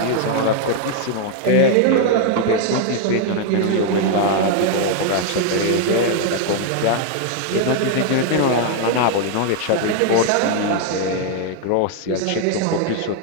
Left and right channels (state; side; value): different; both; correlation 0.00